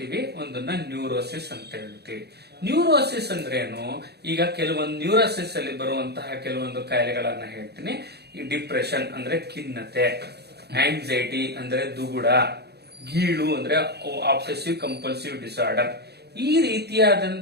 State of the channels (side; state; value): left; late; 0.48 ms